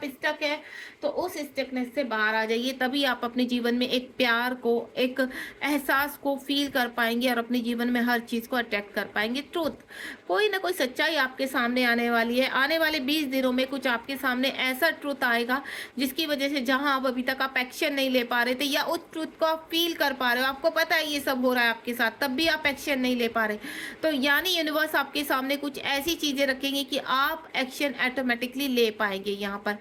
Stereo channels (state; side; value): identical; both; correlation 1.00